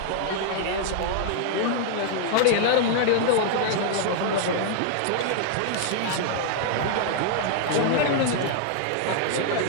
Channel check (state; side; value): different; both; correlation -0.01